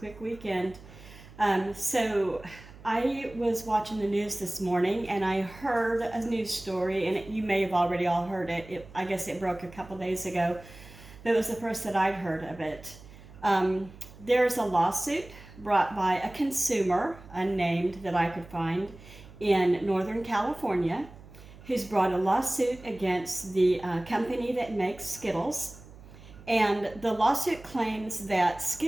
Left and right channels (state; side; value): noise; right; hum, 19 dB below the sound